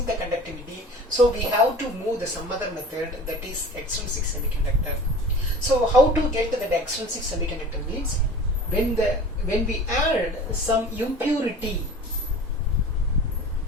the conductivity. So we have to move the some other method, that is extrinsic semiconductor. So how to get the extrinsic semiconductor means when we add some impurity.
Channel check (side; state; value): both; normal; correlation 0.40